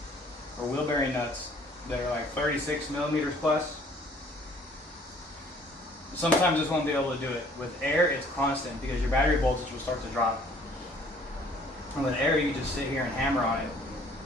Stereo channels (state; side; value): normal; both; correlation 0.57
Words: or wheel bearing nuts that are like 36 millimeters plus, sometimes this won't be able to do it. With air, it's constant because your battery voltage will start to drop. And with air, you can just sit here and hammer on it,